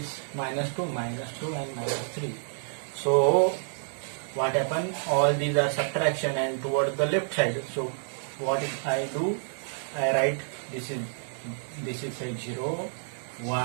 minus 2 and minus 3. So what happened? All these are subtraction and toward the left side. So what I do? I write this is say 0,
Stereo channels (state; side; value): silent; left; digital silence